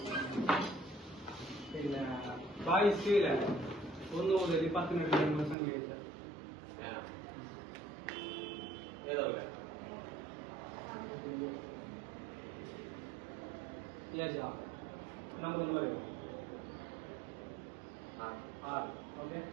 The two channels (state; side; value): drops out; left; at 5.6 s